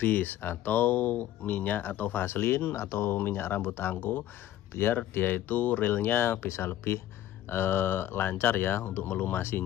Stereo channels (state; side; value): quieter; right; 12.7 dB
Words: atau minyak atau vaselin atau minyak rambut angko, biar dia itu realnya bisa lebih lancar ya untuk